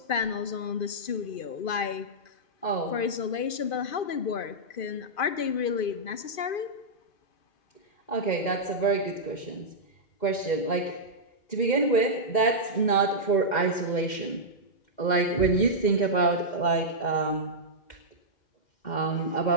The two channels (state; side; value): late; right; 2.5 ms